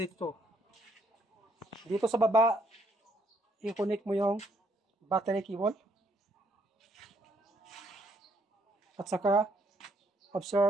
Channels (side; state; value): both; normal; correlation 0.70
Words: Dito sa baba, i-connect mo yung battery cable at saka